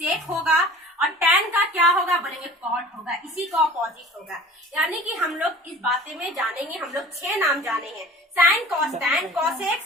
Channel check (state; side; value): normal; both; correlation 0.43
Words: होगा। और टैन का क्या होगा? बोलेंगे कॉट होगा। इसी का ऑपोजिट होगा। यानी कि हम लोग इस बातें में जानेंगे, हम लोग 6 नाम जाने हैं, साइन, कॉस, टैन, कॉसेक,